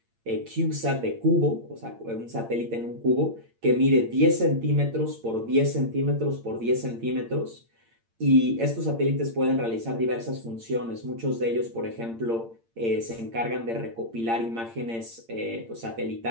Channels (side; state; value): left; late; 8.8 ms